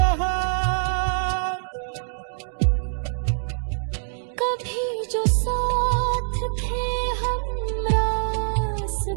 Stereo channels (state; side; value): silent; left; digital silence